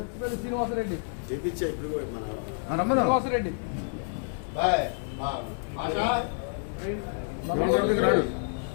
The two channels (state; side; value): silent; right; digital silence